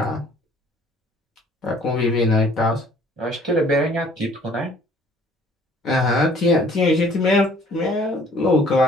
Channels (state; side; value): normal; both; correlation 0.56